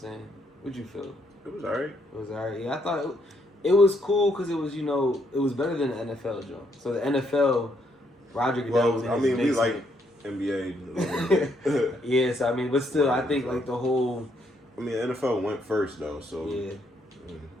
What'd you feel? It was alright. It was alright. Yeah, I thought it was cool because it was, it was better than the NFL joint. So the NFL, Roger Goodell was in his we basement. like NBA. Yeah, so I mean, but still, I think like the whole. I mean, the NFL went first though, so. Yeah.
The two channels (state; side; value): normal; both; correlation 0.73